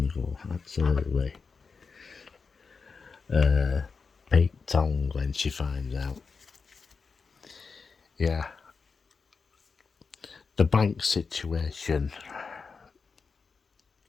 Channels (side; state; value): right; quieter; 5.0 dB